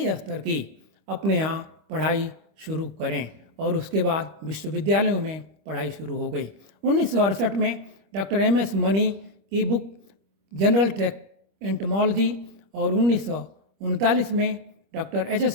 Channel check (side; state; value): left; late; 25 ms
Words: स्तर की अपने यहाँ पढ़ाई शुरू करें और उसके बाद विश्वविद्यालयों में पढ़ाई शुरू हो गई। 1968 में डॉक्टर MS मनी की बुक जनरल एंटोमोलॉजी और 1939 में डॉक्टर HS